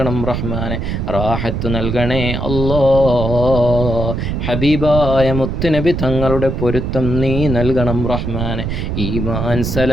റഹ്മാനെ, റാഹത്ത് നൽകണേ അല്ലാ. ഹബീബായ മുത്തുനബി തങ്ങളുടെ പൊരുത്തം നീ നൽകണം റഹ്മാനെ. ഈമാൻ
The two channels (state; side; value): noise; right; rumble, 3 dB below the sound